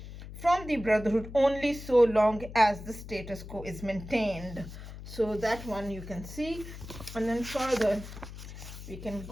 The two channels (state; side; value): noise; left; hum, 12 dB below the sound